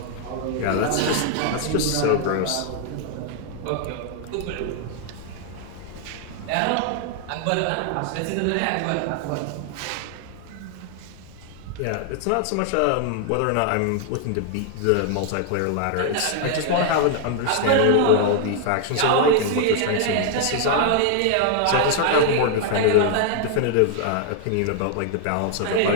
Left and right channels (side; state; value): both; different; correlation 0.00